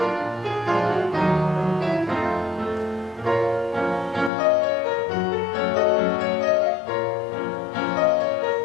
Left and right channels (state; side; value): drops out; right; at 4.3 s